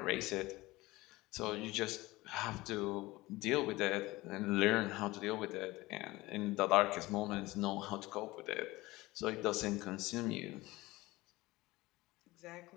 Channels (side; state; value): right; quieter; 19.9 dB